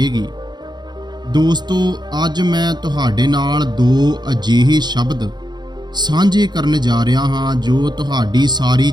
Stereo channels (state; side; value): late; left; 0.21 ms